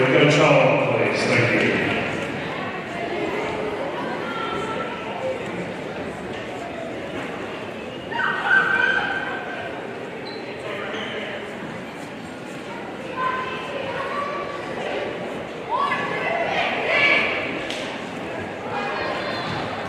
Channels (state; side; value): identical; both; correlation 1.00